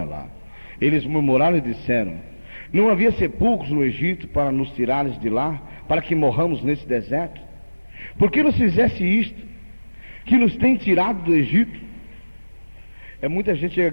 lá. Eles murmuraram e disseram: não havia sepulcros no Egito para nos tirares de lá, para que morramos nesse deserto? Por que nos fizesse isto, que nos tem tirado do Egito? É muita gente chega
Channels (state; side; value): inverted; both; correlation -1.00